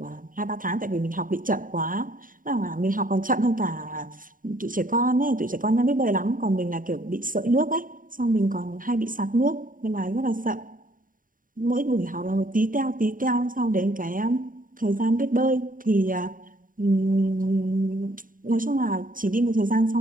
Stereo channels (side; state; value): left; late; 0.40 ms